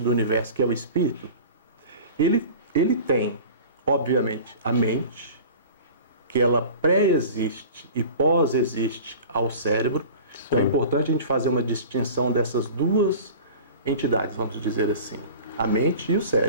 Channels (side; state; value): both; inverted; correlation -0.39